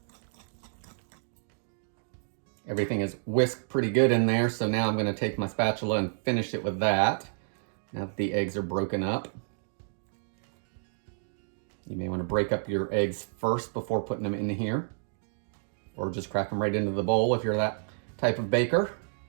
Everything is whisked pretty good in there, so now I'm going to take my spatula and finish it with that. Now that the eggs are broken up. You may want to break up your eggs first before putting them in here, or just crack them right into the bowl if you're that type of baker.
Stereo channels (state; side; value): silent; left; digital silence